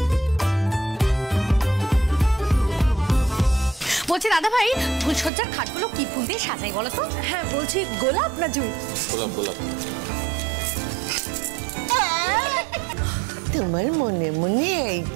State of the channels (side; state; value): left; drops out; at 5.3 s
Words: বলছি দাদা ভাই, ফুলসজ্জার খাটগুলো কি ফুল দিয়ে সাজাই বলো তো? হ্যাঁ বলছি, গোলাপ না জুঁই? গোলাপ গোলাপ। তোমার মনে মনে এই